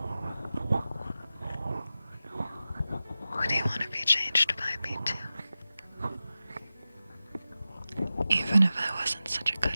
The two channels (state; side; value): inverted; both; correlation -0.94